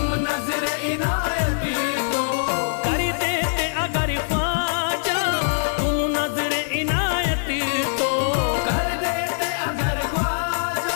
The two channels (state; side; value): silent; right; digital silence